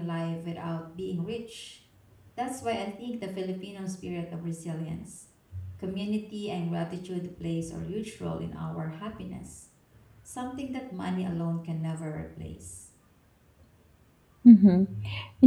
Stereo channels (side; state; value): both; identical; correlation 1.00